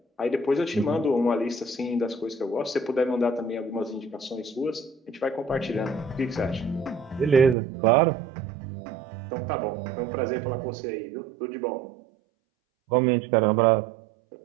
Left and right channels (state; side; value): drops out; left; at 7.6 s